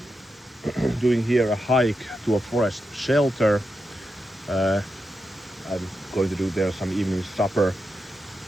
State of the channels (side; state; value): both; normal; correlation 0.87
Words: Doing here a hike to a forest shelter. I'm going to do there some evening supper.